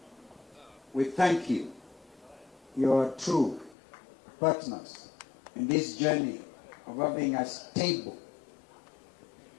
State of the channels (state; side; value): drops out; right; at 3.8 s